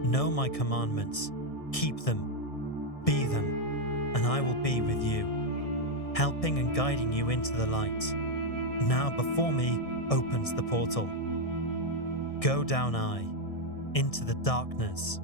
Know my commandments, keep them, be them, and I will be with you, helping and guiding you into the light. Now before me opens the portal. Go down I, into the darkness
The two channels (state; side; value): late; right; 1.6 ms